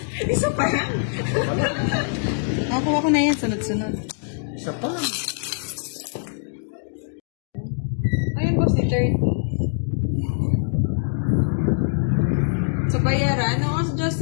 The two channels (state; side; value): silent; right; digital silence